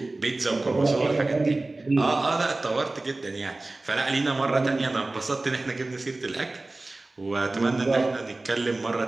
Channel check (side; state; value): left; quieter; 3.0 dB